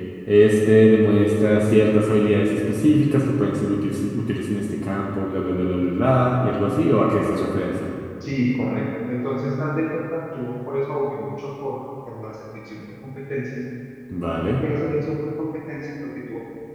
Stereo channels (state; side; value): identical; both; correlation 1.00